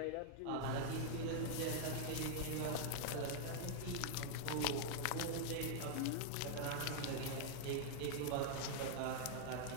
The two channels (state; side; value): different; both; correlation 0.00